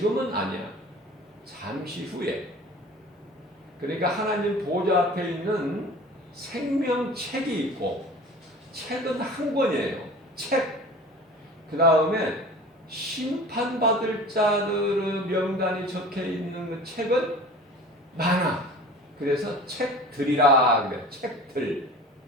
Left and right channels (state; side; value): normal; both; correlation 0.41